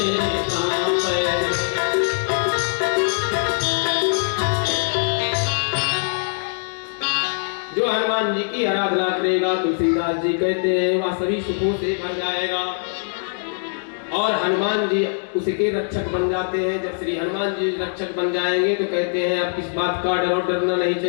कांपे। जो हनुमान जी की आराधना करेगा, तुलसीदास जी कहते हैं, वह सभी सुखों से भर जाएगा। और हनुमान जी उसके रक्षक बन जाते हैं। जब श्री हनुमान जी रक्षक बन जाएंगे तो कहते हैं, अब किस बात का डर और डरना नहीं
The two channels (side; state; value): right; silent; digital silence